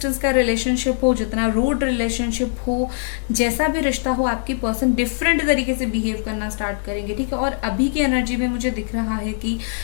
का रिलेशनशिप हो, जितना रूड रिलेशनशिप हो, जैसा भी रिश्ता हो, आपकी पर्सन डिफरेंट तरीके से बिहेव करना स्टार्ट करेंगे, ठीक है। और अभी की एनर्जी में मुझे दिख रहा है कि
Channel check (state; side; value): silent; right; digital silence